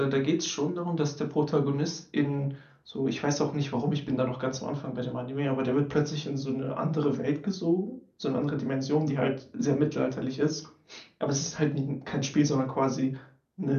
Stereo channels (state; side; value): identical; both; correlation 1.00